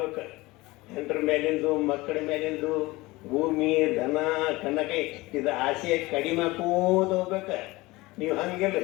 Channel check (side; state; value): right; quieter; 21.1 dB